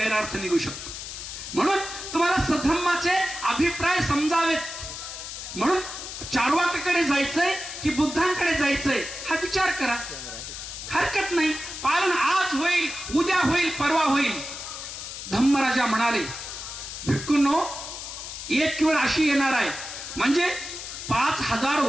निघू शकतो. म्हणून तुम्हाला सद्धम्माचे अभिप्राय समजावेत. म्हणून चार्वाकाकडे जायचंय की बुद्धांकडे जायचंय हा विचार करा, हरकत नाही. पालन आज होईल, उद्या होईल, परवा होईल. धम्मराजा म्हणाले, भिक्खूंनो, एक वेळ अशी येणार आहे, म्हणजे 5000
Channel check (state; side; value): noise; left; hiss, 9 dB below the sound